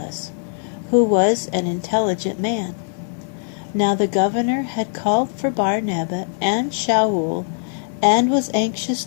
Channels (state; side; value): silent; right; digital silence